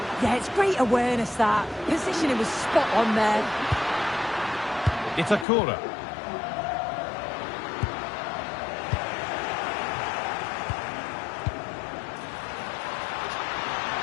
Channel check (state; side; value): drops out; right; at 5.5 s